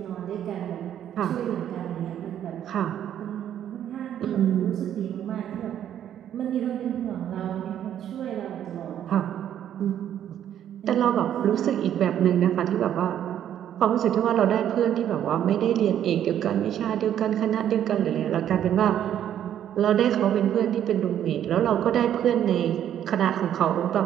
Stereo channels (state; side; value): quieter; left; 10.4 dB